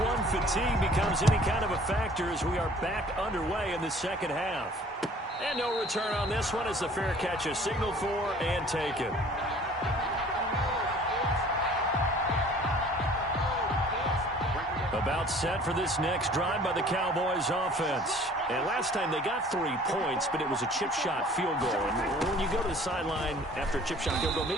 fatigue becomes any kind of a factor as we are back underway in the second half. And no return on this one as the fair catch is signaled for and taken. About set for this next drive by the Cowboys offense. And last time they got 3 points, but it was a chip shot field goal. And when you go to the sideline after a chip shot field goal,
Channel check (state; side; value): normal; both; correlation 0.51